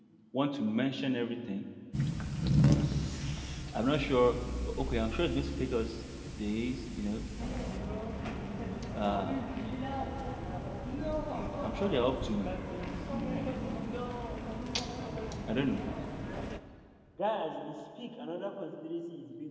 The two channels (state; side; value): identical; both; correlation 1.00